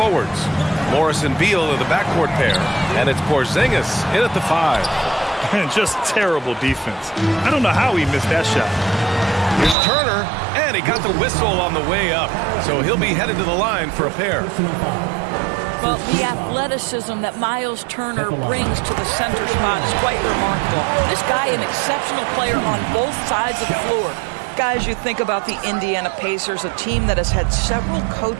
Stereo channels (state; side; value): drops out; left; at 9.8 s